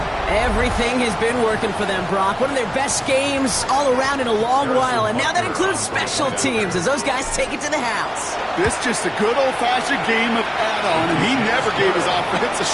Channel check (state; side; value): identical; both; correlation 1.00